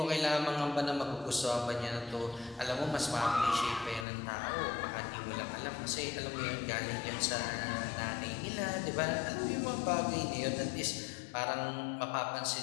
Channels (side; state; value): right; drops out; at 4.0 s